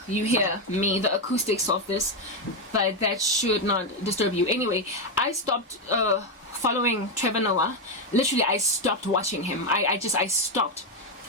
you hear me, the acoustics of this, but that should not disturb you. Anyway, I stopped following Trevor Noah. Literally, I stopped watching him. I stopped.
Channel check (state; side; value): normal; both; correlation 0.06